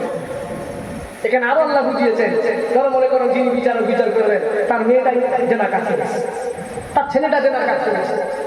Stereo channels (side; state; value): both; identical; correlation 1.00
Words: এখানে আরো আল্লাহ বুঝিয়েছেন, ধরো মনে করো যিনি বিচারক বিচার করবেন, তার মেয়েটাই জেনার কাজ করেছে, তার ছেলেটা জেনার কাজ করেছে,